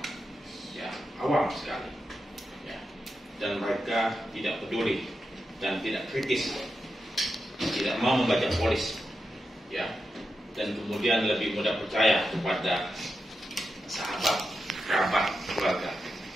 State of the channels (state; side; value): normal; both; correlation 0.88